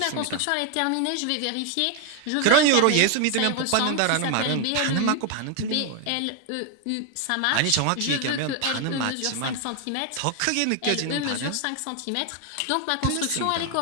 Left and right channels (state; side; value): different; both; correlation 0.01